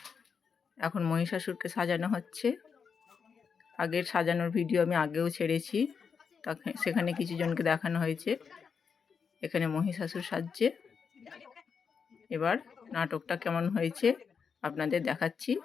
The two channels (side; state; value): right; quieter; 6.1 dB